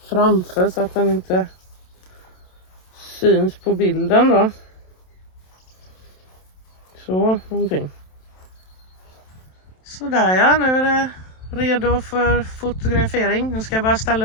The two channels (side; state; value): right; late; 27 ms